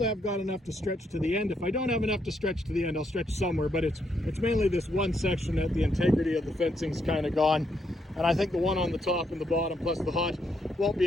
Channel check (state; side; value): normal; both; correlation 0.76